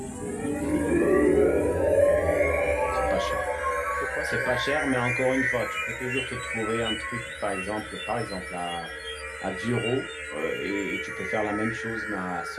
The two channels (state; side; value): identical; both; correlation 1.00